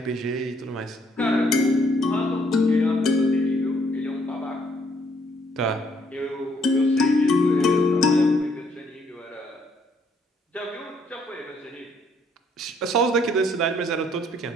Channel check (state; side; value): normal; both; correlation 0.68